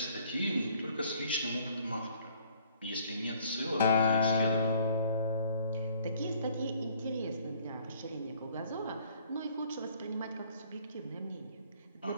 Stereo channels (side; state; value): both; inverted; correlation -0.60